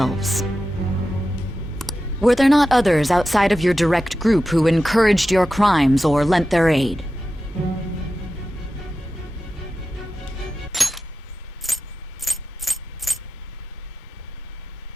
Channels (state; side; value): normal; both; correlation 0.92